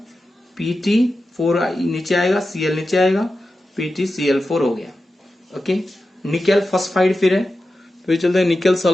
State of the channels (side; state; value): both; normal; correlation 0.92